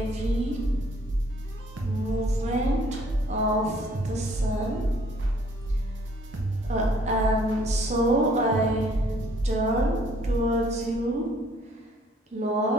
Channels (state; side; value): normal; both; correlation 0.61